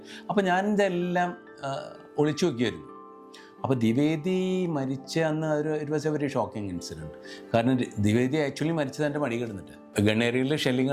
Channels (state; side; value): identical; both; correlation 1.00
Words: അപ്പോൾ ഞാൻ ഇതെല്ലാം ഒളിച്ചു നോക്കിയായിരുന്നു. അപ്പോൾ ദ്വിവേദി മരിച്ച അന്ന് it was A very shocking incident. കാരണം ദ്വിവേദി ആക്ച്വലി മരിച്ചത് എൻ്റെ മടി കിടന്നിട്ട്. ഗൺ ഏരിയയിൽ ഷെല്ലിങ്